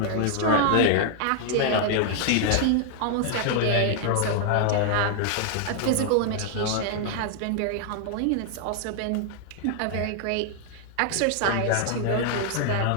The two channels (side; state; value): both; different; correlation -0.01